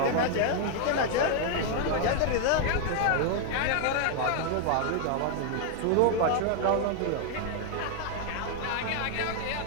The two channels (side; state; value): both; different; correlation 0.00